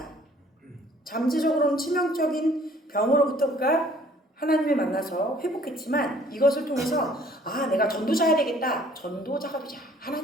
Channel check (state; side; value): normal; both; correlation 0.57